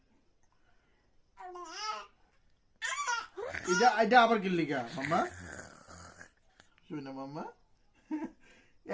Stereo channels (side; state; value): both; identical; correlation 1.00